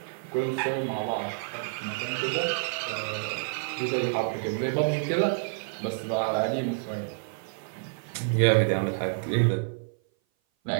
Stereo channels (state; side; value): silent; left; 57 dB below the other